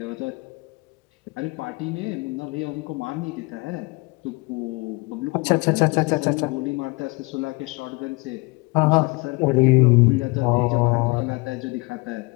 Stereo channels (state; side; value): quieter; right; 26.8 dB